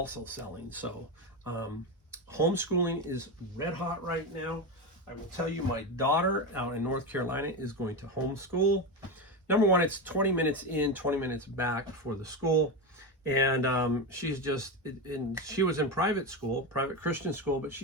selling. So homeschooling is red hot right now. I will tell you, my daughter out in North Carolina is going to homeschool. Number one, it's 20 minutes in, 20 minutes back for the school. And she was in private school, private Christian school, but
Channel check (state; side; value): normal; both; correlation 0.16